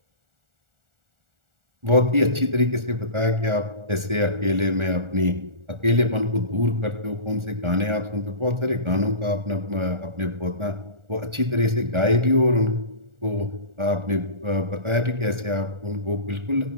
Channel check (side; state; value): left; late; 1.4 ms